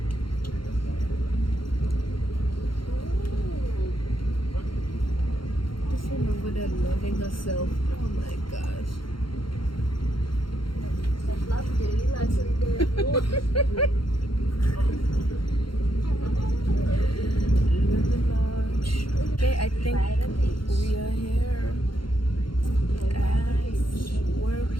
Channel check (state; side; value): late; right; 0.73 ms